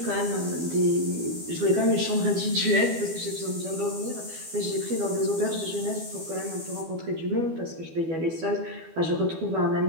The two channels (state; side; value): late; left; 12 ms